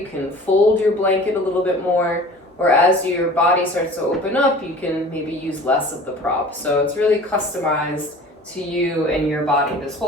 can fold your blanket a little bit more, or as your body starts to open up, you can maybe use less of the prop. So it's really customized to you and your body. This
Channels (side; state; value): both; normal; correlation 0.44